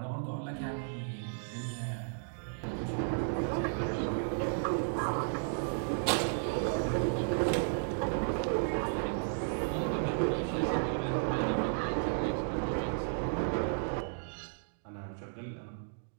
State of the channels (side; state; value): left; silent; digital silence